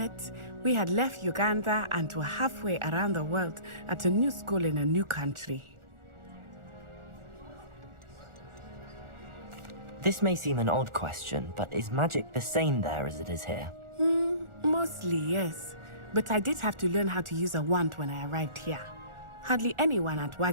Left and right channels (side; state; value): left; late; 1.4 ms